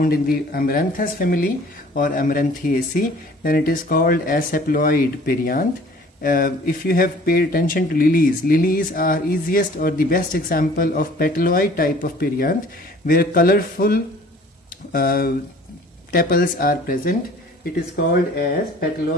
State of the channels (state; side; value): normal; both; correlation 0.51